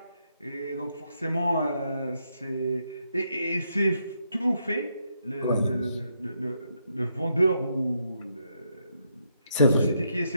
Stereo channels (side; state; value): both; inverted; correlation -0.78